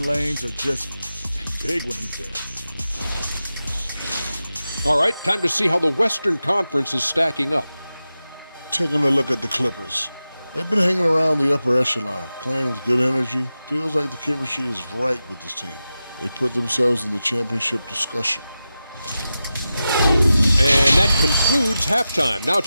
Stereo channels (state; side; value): inverted; both; correlation -0.93